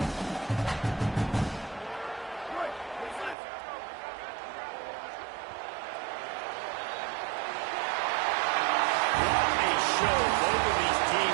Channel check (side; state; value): left; drops out; at 3.4 s